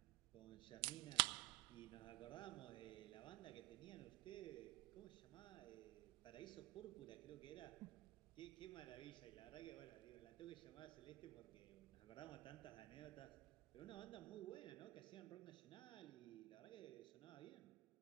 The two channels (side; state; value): left; quieter; 19.4 dB